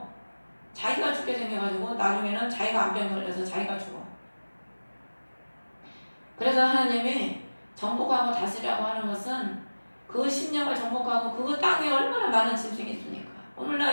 자기가 죽게 생겨가지고 나중에는 자기가 암병 걸려서 자기가 죽어. 그래서 하나님이 정복하고 다스리라고 하는 것은 그 심령을 정복하고 그 땅에 얼마나 많은 짐승이 있습니까?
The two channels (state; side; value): inverted; both; correlation -1.00